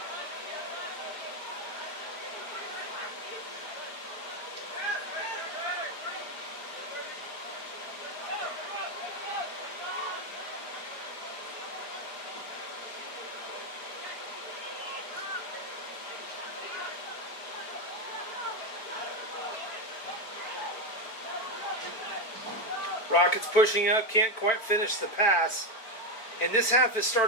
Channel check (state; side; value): late; right; 4.5 ms